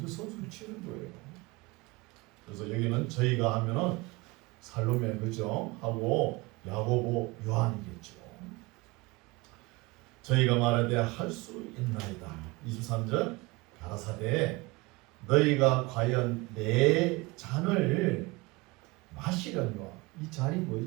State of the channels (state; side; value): quieter; left; 23.7 dB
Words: 선수를 치는 거예요. 그래서 여기는 저희가 하면은 살로메 그죠? 하고 야고보 요한이겠죠. 저희가 말하되 할 수 있나이다. 23절 가라사대 너희가 과연 내 잔을 마시려니와 이 잔이